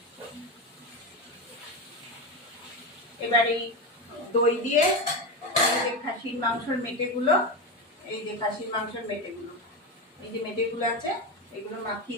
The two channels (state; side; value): normal; both; correlation 0.17